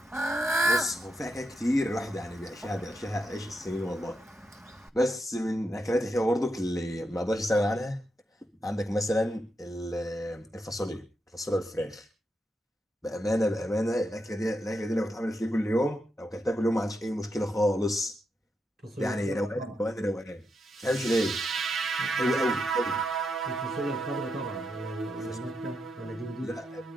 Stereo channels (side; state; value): both; normal; correlation 0.84